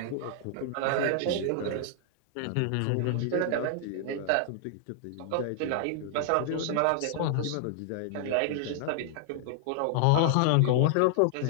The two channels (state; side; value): different; both; correlation -0.01